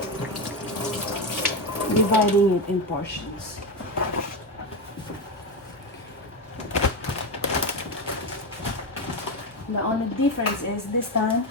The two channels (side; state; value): both; normal; correlation 0.14